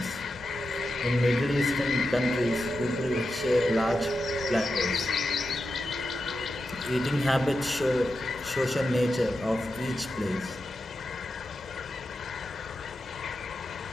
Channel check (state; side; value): normal; both; correlation 0.89